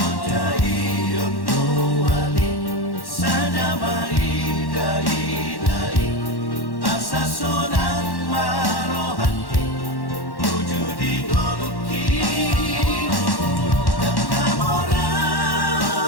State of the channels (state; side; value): late; right; 1.1 ms